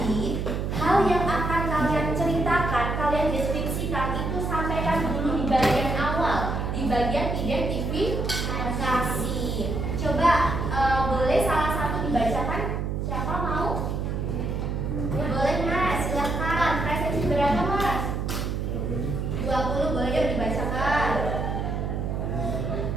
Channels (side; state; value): right; noise; hum, 1 dB below the sound